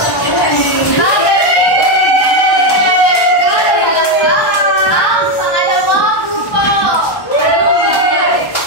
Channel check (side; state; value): right; late; 1.1 ms